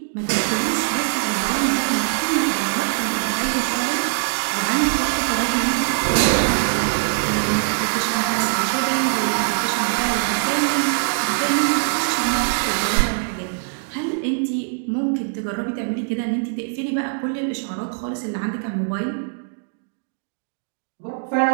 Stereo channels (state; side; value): silent; left; digital silence